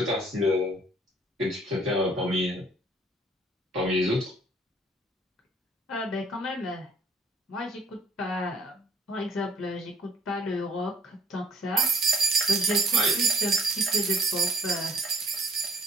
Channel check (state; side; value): normal; both; correlation 0.60